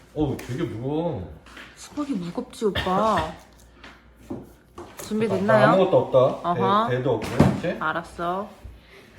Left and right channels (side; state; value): both; identical; correlation 1.00